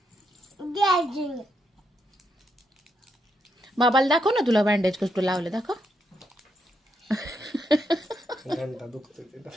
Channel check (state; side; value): normal; both; correlation 0.79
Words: बाबाला दाखव ना, तुला बँडेज कसं लावलं, दाखव. घंटा दुखतोय